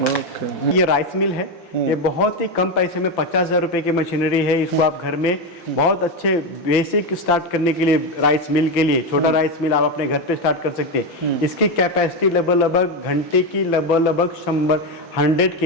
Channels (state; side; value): late; right; 5.8 ms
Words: ये राइस मिल है, ये बहुत ही कम पैसे में 50,000 रुपये की मशीनरी है। इसको आप घर में बहुत अच्छे बेसिक स्टार्ट करने के लिए, राइस मिल के लिए छोटा राइस मिल आप अपने घर पे स्टार्ट कर सकते हैं। इसकी कैपेसिटी लगभग घंटे की लगभग 100